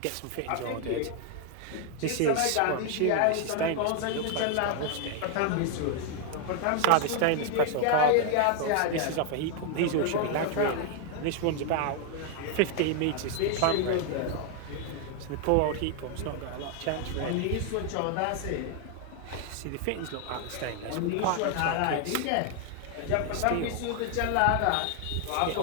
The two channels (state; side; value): different; both; correlation 0.00